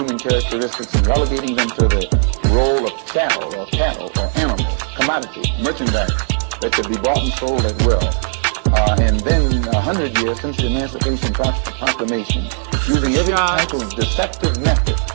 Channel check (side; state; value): left; silent; 63 dB below the other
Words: characteristics and relegating them to the role of cattle or animals, commodity, merchandise that could be bought and sold at will. And then 100 years since the Emancipation Proclamation, using every type of deceptive method